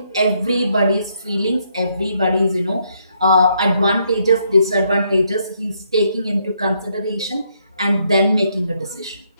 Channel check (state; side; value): inverted; both; correlation -0.74